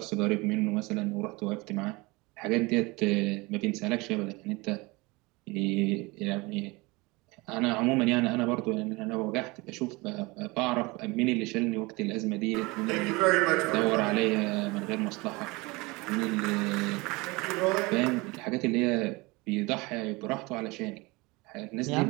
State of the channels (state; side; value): quieter; left; 24.3 dB